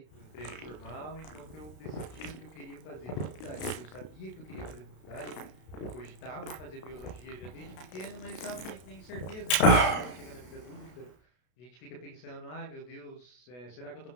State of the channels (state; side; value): late; right; 32 ms